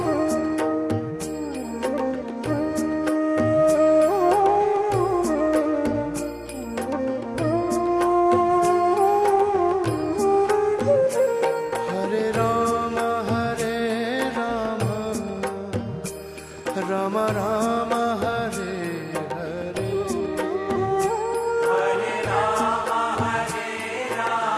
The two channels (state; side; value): identical; both; correlation 1.00